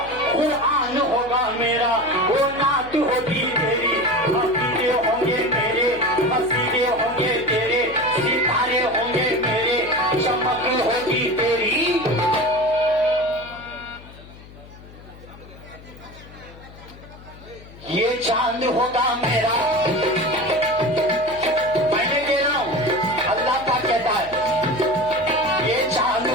कुरान होगा मेरा, वो नात होगी तेरी, अकीदे होंगे मेरे, मसीदे होंगे तेरे, सितारे होंगे मेरे, चमक होगी तेरी। ये चांद होगा मेरा, मैंने कह रहा हूं, अल्लाह का कहता है, ये चांद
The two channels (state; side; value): noise; left; hum, 19 dB below the sound